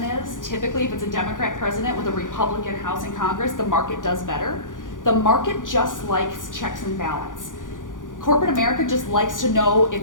is. Typically, if it's a Democrat president with a Republican House and Congress, the market does better. The market just likes checks and balance. Corporate America just likes to know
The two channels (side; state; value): right; late; 0.88 ms